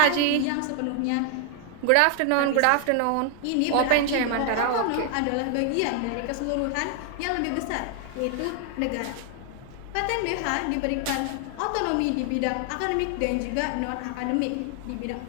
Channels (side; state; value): both; different; correlation 0.00